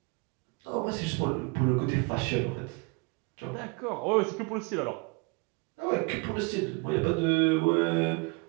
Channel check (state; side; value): quieter; left; 30.6 dB